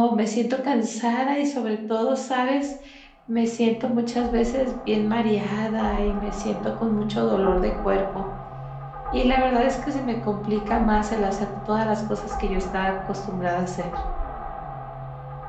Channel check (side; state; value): both; identical; correlation 1.00